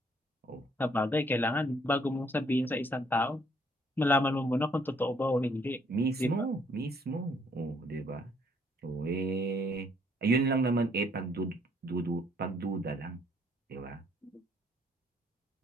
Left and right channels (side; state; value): both; normal; correlation 0.66